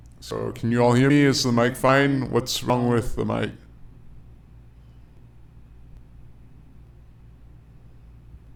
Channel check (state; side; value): identical; both; correlation 1.00